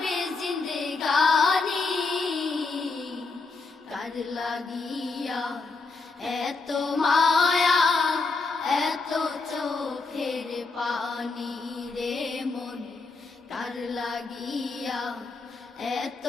জিন্দেগানি, কার লাগিয়া এত মায়া, এত চোখের পানি রে মন। কার লাগিয়া এত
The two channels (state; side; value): quieter; right; 4.0 dB